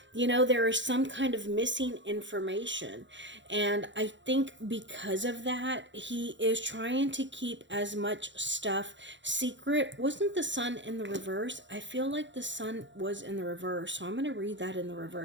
There is some kind of missing information. And I think because of that, he is trying to keep as much stuff secret. Wasn't the sun in the reverse? I feel like the sun was in the reverse. So I'm going to read that in the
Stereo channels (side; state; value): left; late; 0.54 ms